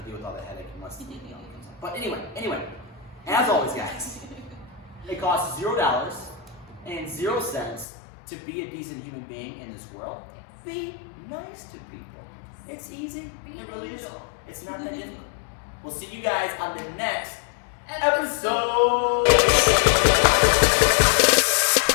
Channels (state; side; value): drops out; right; at 7.9 s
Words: to deal with all the headache unless the comes out. But anyway, as always, guys. It costs $0 and 0 cents to be a decent human being in this world. Be nice to people. It's easy. Be an angel. It's not that difficult. We'll see you guys on the next episode.